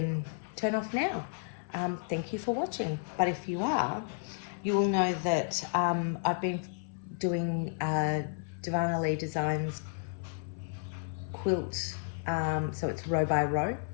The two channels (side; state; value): right; silent; 56 dB below the other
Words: turn off now. Thank you for watching. But if you are, you will know that I've been doing Divana Lee Designs quilt, so it's row by row,